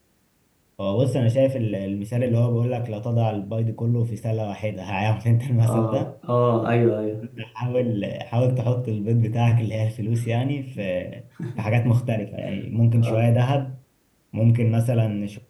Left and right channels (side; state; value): both; identical; correlation 1.00